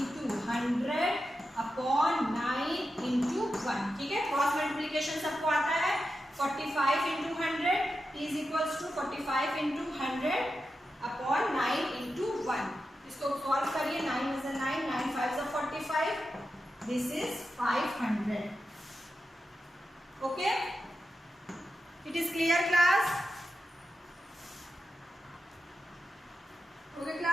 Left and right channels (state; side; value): normal; both; correlation 0.90